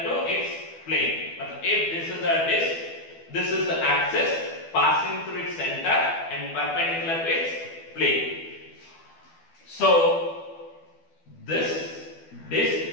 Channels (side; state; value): right; late; 12 ms